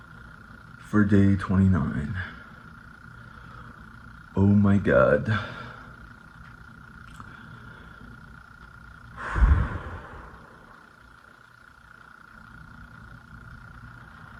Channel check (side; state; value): both; identical; correlation 1.00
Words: for day 29. Oh my god.